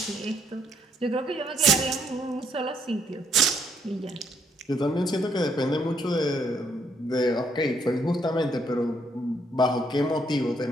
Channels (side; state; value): both; normal; correlation 0.71